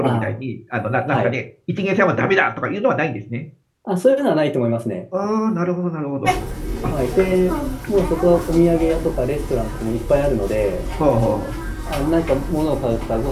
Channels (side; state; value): both; identical; correlation 1.00